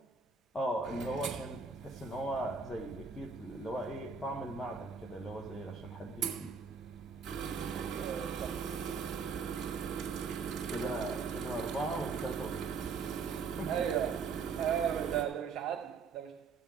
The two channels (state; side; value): quieter; left; 5.0 dB